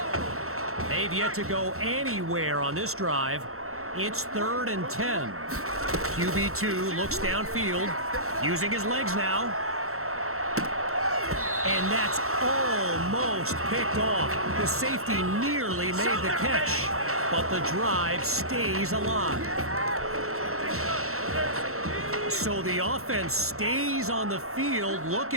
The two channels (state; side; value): late; left; 0.63 ms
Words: They've yet to go anywhere on this drive. It's 3rd and 10. QB2 looks downfield, using his legs now. And that's almost picked off. The safety nearly made the catch, but the drive stays alive. So the offense stays on the field,